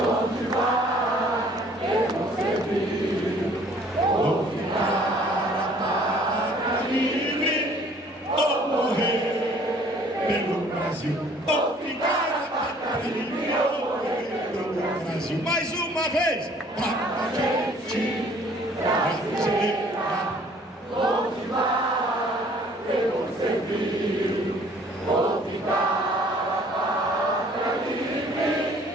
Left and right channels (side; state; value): both; normal; correlation 0.56